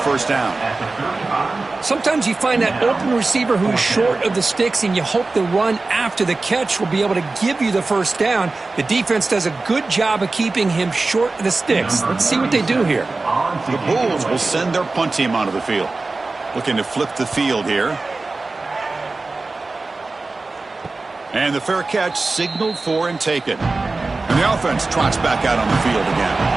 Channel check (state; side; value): quieter; left; 3.5 dB